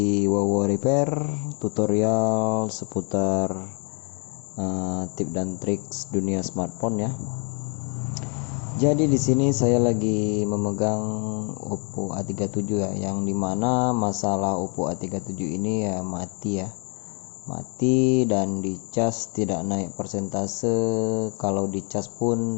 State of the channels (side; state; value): right; quieter; 37.7 dB